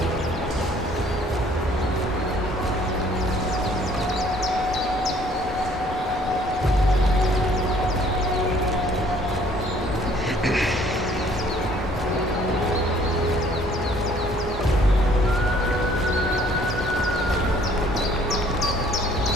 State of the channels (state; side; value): normal; both; correlation 0.59